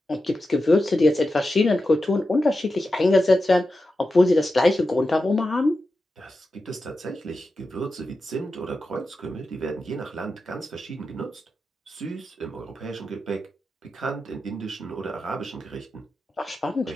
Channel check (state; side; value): normal; both; correlation 0.91